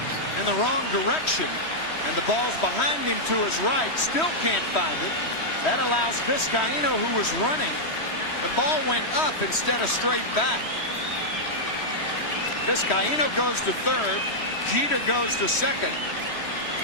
in the wrong direction. And the ball's behind him to his right. Still can't find it. That allows Vizcaíno, who was running. The ball went up instead of straight back. Vizcaíno goes to third. Jeter goes to second.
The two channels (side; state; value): right; late; 3.1 ms